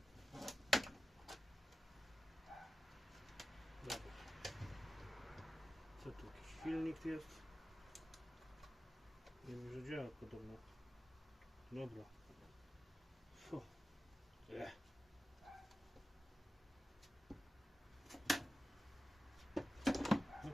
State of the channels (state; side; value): normal; both; correlation 0.94